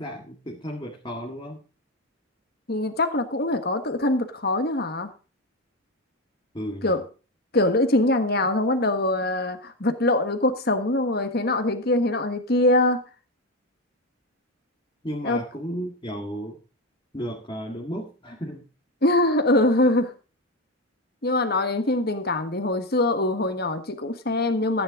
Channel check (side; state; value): both; normal; correlation 0.13